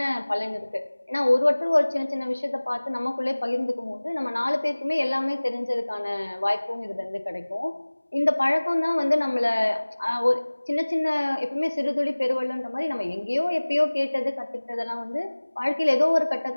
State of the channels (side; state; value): both; inverted; correlation -1.00